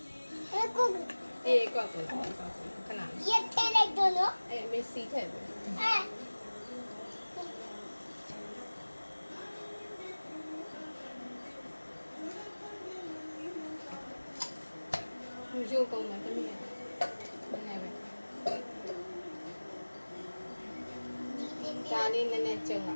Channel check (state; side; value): inverted; both; correlation -1.00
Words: အေးကွက်ကိုခဏရက်ထဲလိုက်တော့နော်အေးမေးစီထည့်ပြီရုပ်ကုန်မယ်တမီးရမနေပဲဒါလေးနည်းနည်းကျုံလာ